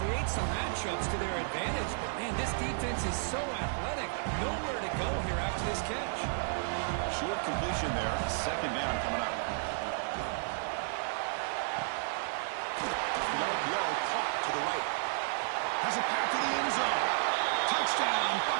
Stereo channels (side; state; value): left; silent; 56 dB below the other